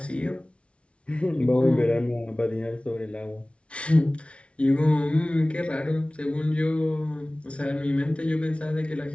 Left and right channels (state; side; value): late; right; 0.060 ms